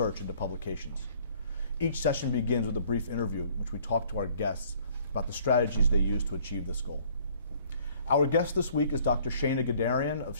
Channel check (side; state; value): both; inverted; correlation -0.58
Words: into publications. Each session begins with a brief interview in which we talk to our guests about the strategies they use to achieve this goal. Our guest this week is Dr. Shana Gadarian